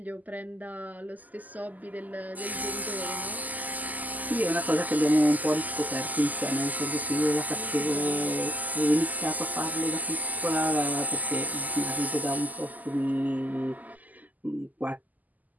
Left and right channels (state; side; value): late; left; 0.081 ms